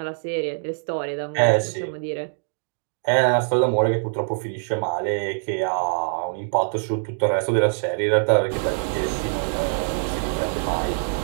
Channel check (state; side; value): silent; left; digital silence